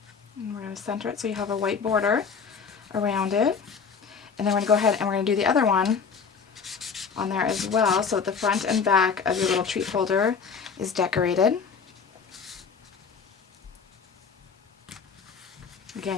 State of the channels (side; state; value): right; quieter; 5.9 dB